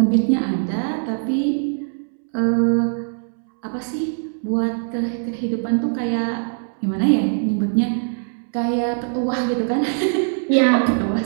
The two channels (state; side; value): silent; left; 65 dB below the other